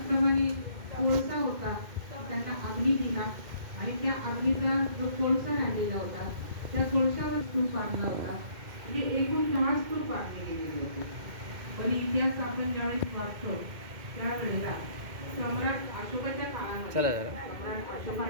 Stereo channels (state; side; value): late; left; 2.1 ms